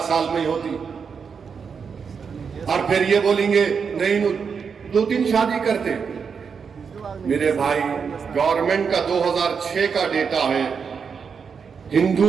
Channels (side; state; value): left; quieter; 6.1 dB